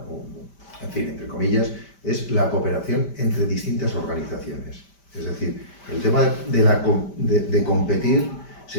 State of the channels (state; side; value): late; right; 5.1 ms